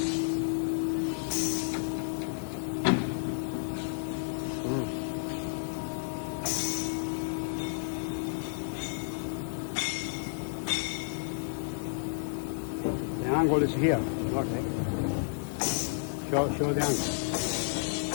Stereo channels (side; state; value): right; silent; digital silence